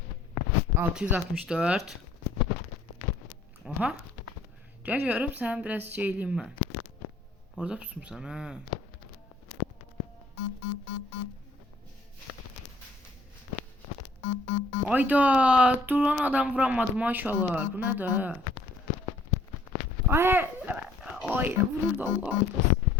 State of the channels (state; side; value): quieter; right; 3.0 dB